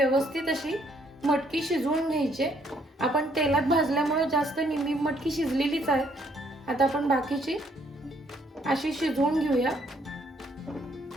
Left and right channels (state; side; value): normal; both; correlation 0.68